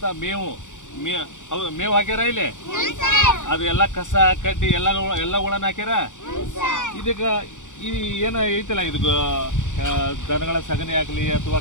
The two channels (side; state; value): right; late; 0.86 ms